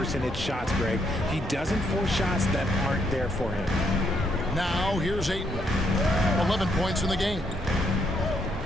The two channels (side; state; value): both; normal; correlation 0.74